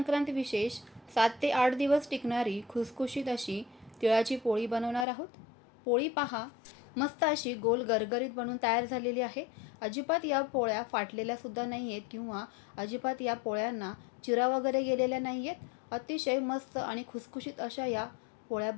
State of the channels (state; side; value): drops out; right; at 5.1 s